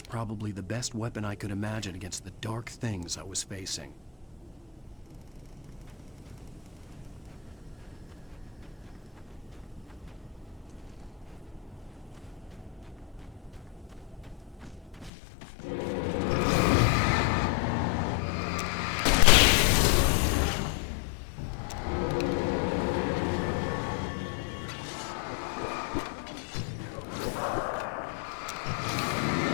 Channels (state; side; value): drops out; right; at 15.1 s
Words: probably the best weapon I could imagine against the dark things I was facing.